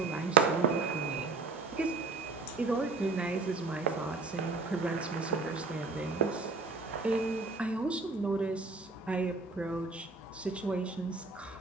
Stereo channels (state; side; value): quieter; left; 4.0 dB